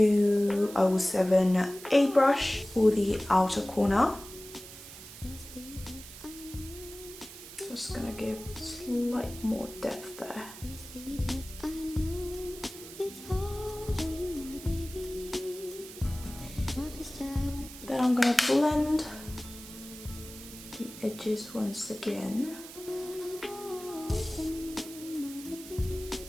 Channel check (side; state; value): right; noise; hiss, 15 dB below the sound